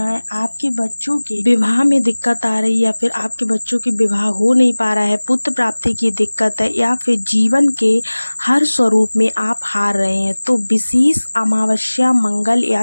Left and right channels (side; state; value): both; inverted; correlation -1.00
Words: है। आपके बच्चों के विवाह में दिक्कत आ रही है या फिर आपके बच्चों के विवाह हो नहीं पा रहा है, पुत्र प्राप्ति की दिक्कत है या फिर जीवन के हर स्वरूप में आप हार रहे हैं, तो विशेष अमावस्या, मंगल